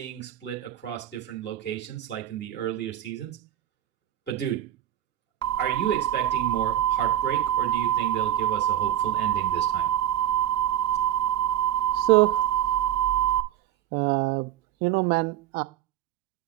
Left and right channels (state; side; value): quieter; left; 11.9 dB